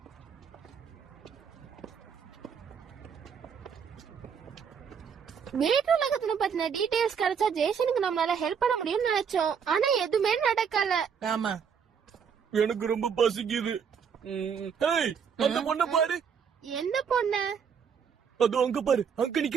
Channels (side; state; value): left; quieter; 7.0 dB